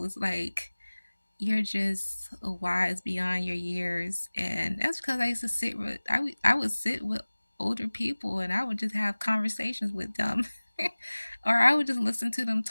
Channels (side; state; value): both; inverted; correlation -1.00